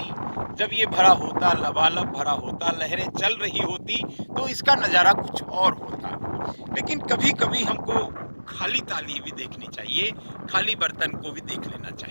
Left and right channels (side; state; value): both; inverted; correlation -1.00